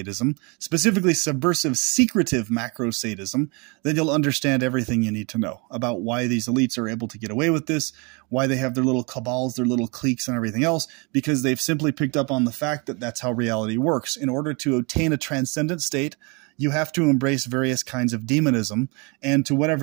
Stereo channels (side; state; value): left; quieter; 30.6 dB